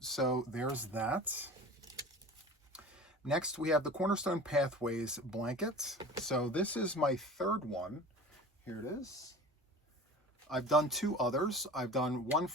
there's that. Next, we have the Cornerstone Pathways blanket. So this is my 3rd one. Here it is. I've done 2 others. I've done one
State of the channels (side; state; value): both; normal; correlation 0.38